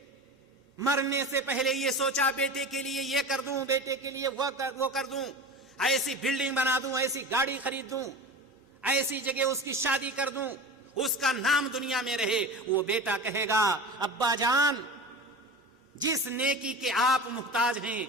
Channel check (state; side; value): normal; both; correlation 0.31